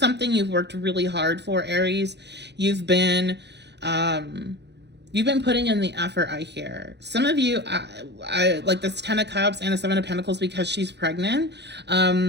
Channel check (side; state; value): left; late; 0.50 ms